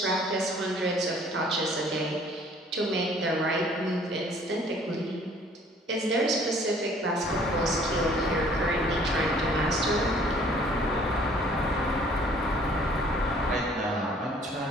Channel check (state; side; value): normal; both; correlation 0.56